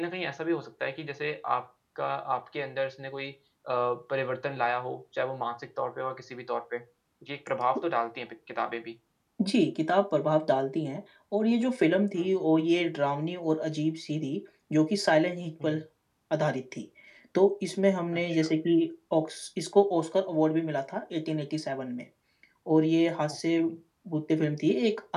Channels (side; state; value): both; identical; correlation 1.00